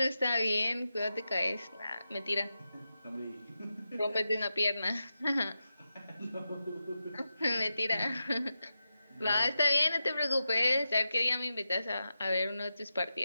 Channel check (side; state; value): both; inverted; correlation -0.90